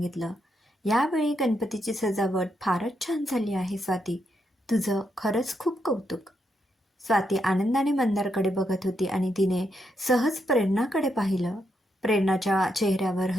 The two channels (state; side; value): normal; both; correlation 0.80